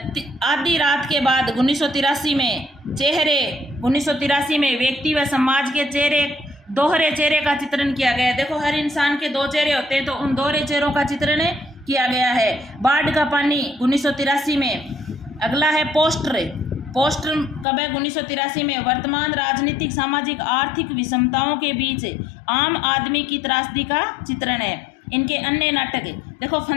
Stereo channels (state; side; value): drops out; right; at 17.7 s